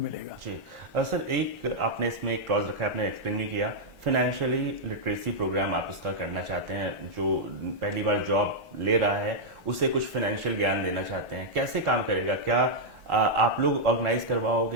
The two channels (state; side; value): late; left; 1.4 ms